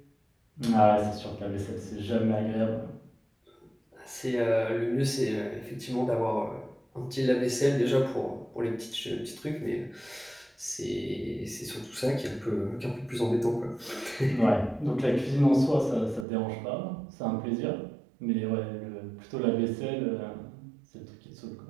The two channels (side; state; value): left; drops out; at 16.2 s